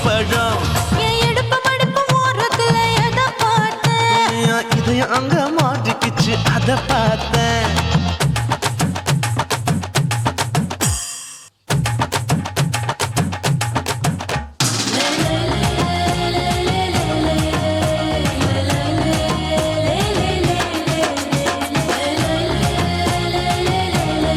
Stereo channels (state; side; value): identical; both; correlation 1.00